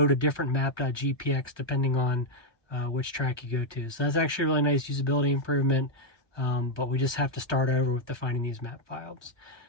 a different map.gpx depending on which track you go to. So that's actually a really nice usability improvement, but we just have to start over with defining these map files.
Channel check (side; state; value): right; late; 1.2 ms